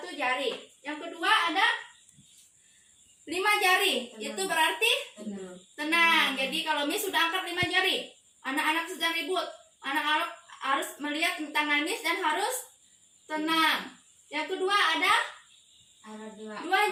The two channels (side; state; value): both; identical; correlation 1.00